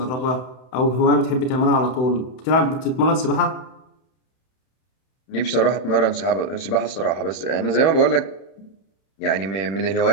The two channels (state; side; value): late; right; 31 ms